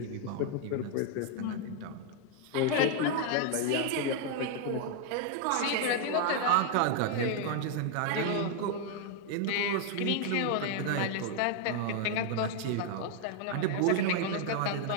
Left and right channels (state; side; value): different; both; correlation 0.00